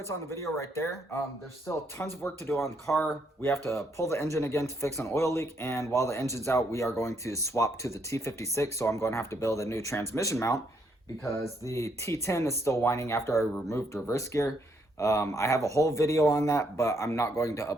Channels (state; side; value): normal; both; correlation 0.73